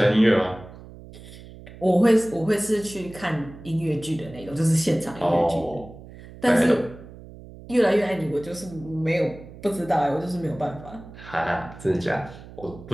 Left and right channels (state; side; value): noise; right; hum, 17 dB below the sound